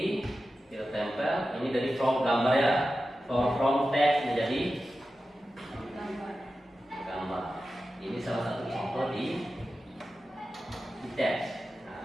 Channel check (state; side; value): normal; both; correlation 0.93